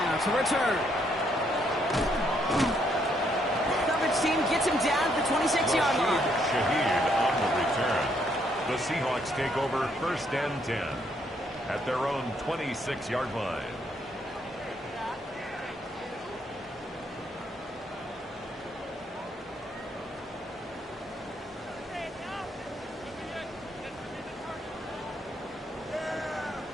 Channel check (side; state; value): both; normal; correlation 0.72